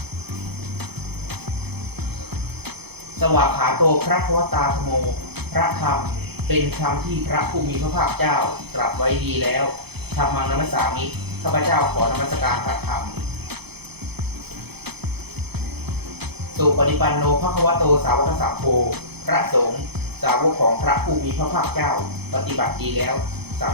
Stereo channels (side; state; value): left; late; 0.98 ms